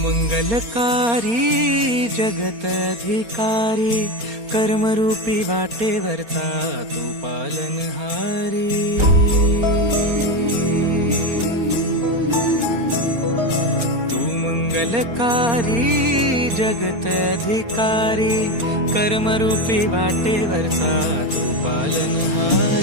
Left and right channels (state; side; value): late; left; 4.3 ms